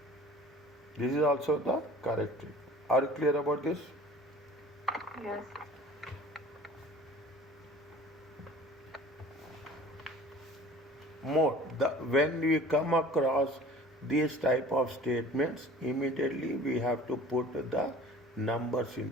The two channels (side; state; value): both; normal; correlation 0.46